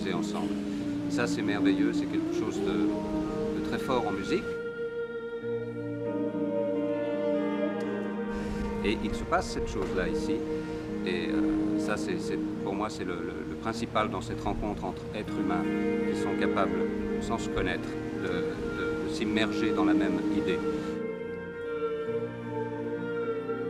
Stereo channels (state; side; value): identical; both; correlation 1.00